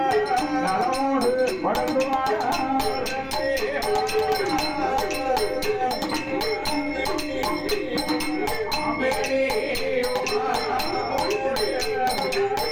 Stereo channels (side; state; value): both; identical; correlation 1.00